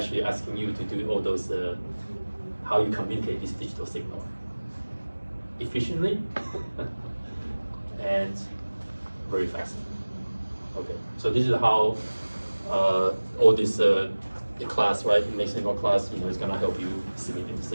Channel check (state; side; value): inverted; both; correlation -1.00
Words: asking you to do all those, how you communicate this digital signal efficiently and very fast. Okay, so this is how all this the class, right, mixed signal class, is gonna help you